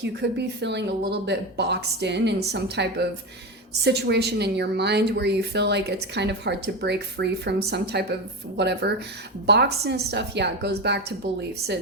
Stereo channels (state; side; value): normal; both; correlation 0.19